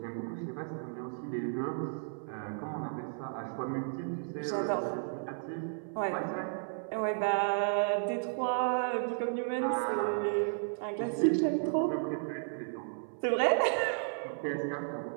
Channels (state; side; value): silent; left; 55 dB below the other